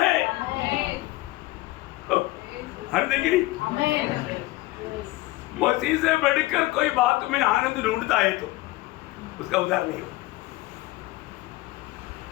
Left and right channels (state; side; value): quieter; right; 19.4 dB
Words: आनंद है कि नहीं? मसीह से बढ़कर कोई बात में आनंद ढूंढता है तो उसका उद्धार नहीं हो।